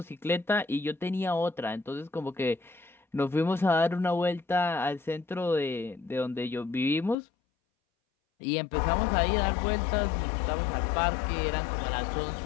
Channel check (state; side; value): drops out; right; at 7.2 s